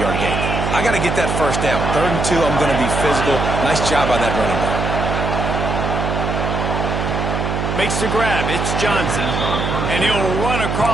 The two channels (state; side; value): noise; right; hum, 1 dB below the sound